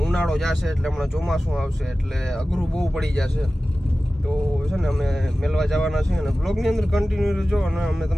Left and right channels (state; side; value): normal; both; correlation 0.96